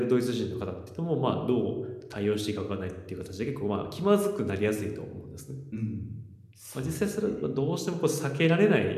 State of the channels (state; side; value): identical; both; correlation 1.00